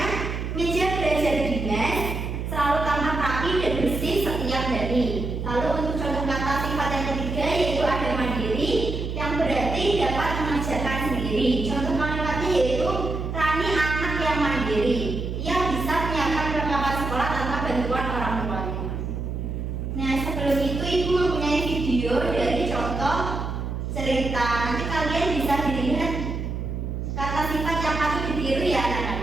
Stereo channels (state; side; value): noise; right; hum, 4 dB below the sound